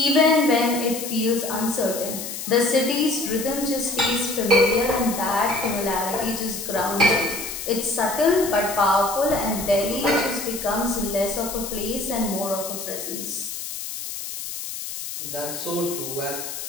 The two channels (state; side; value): noise; left; hiss, 7 dB below the sound